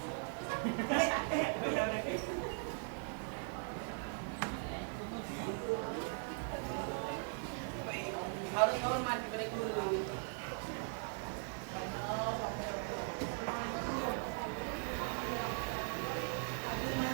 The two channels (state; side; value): silent; left; 51 dB below the other